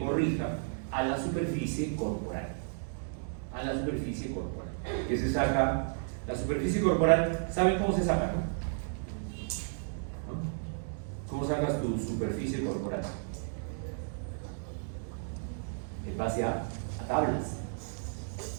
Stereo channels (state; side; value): silent; left; digital silence